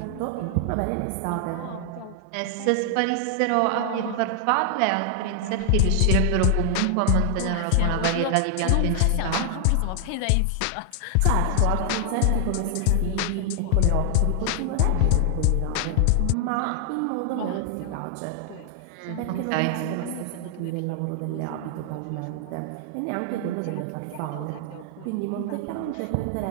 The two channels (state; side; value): different; both; correlation 0.00